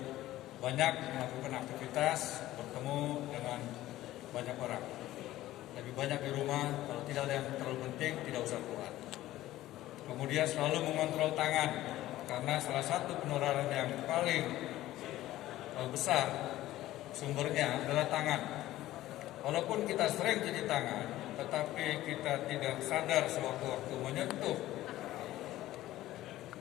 banyak melakukan aktivitas, bertemu dengan banyak orang. Lebih banyak di rumah, kalau tidak ada yang terlalu penting, tidak usah keluar. Kemudian selalu mengontrol tangan, karena salah satu penularan yang paling besar sumbernya adalah tangan. Walaupun kita sering cuci tangan, tetapi kita tidak sadar sewaktu-waktu menyentuh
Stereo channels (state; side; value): quieter; right; 15.2 dB